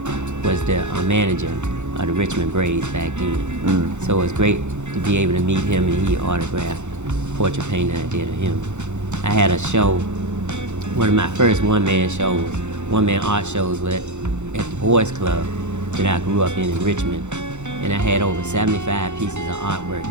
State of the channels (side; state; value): left; late; 0.83 ms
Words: was the manager of the Richmond Braves back then. So it was great to be able to meet him, and he autographed portrait painting I did of him. I had a show, one of my first one-man art shows was at the Boys Club that I grew up in Richmond. And I had over 75 pieces of artwork